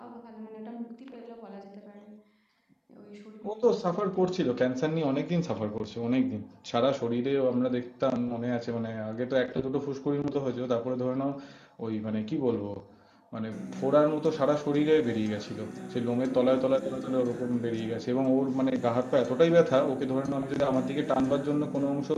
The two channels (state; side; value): identical; both; correlation 1.00